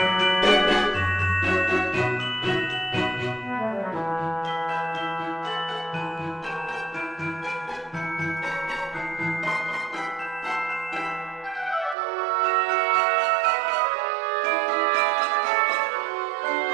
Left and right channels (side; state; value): left; drops out; at 12.0 s